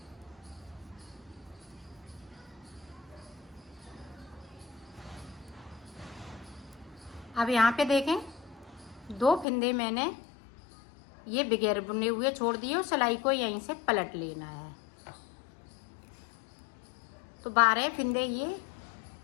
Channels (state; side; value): drops out; right; at 9.5 s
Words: अब यहाँ पे देखें 2 फिंदे मैंने ये बगैर बुने हुए छोड़ दिए और सिलाई को यहीं से पलट लेना है। तो 12 फिंदे ये